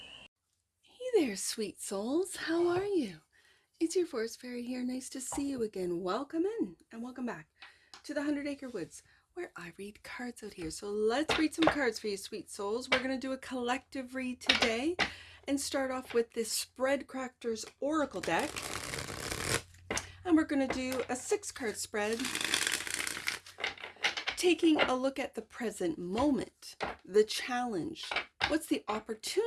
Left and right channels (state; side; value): identical; both; correlation 1.00